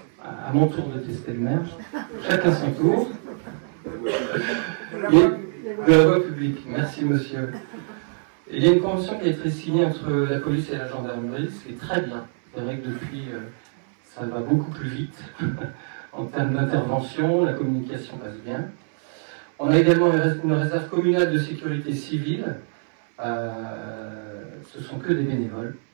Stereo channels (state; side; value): silent; left; 62 dB below the other